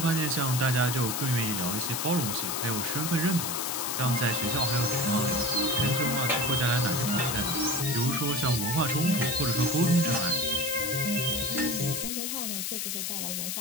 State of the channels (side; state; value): left; noise; hiss, 2 dB below the sound